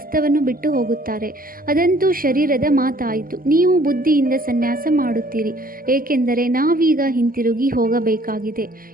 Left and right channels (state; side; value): late; left; 0.42 ms